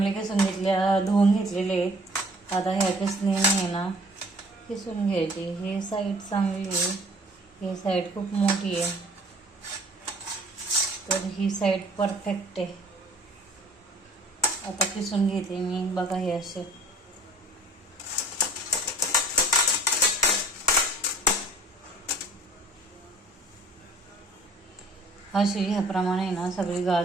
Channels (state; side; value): normal; both; correlation 0.52